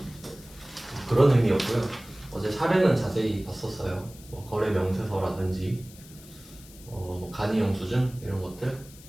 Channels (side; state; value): left; noise; hiss, 21 dB below the sound